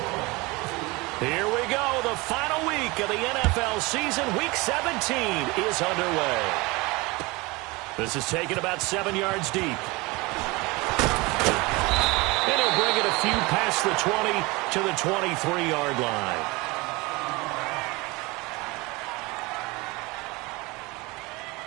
Here we go. The final week of the NFL season. Week 17 is underway. This is taken about 7 yards deep. And he'll bring it a few past the 20 to the 23-yard line.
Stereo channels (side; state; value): left; quieter; 24.1 dB